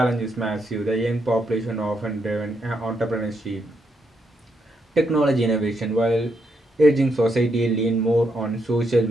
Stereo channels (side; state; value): both; normal; correlation 0.79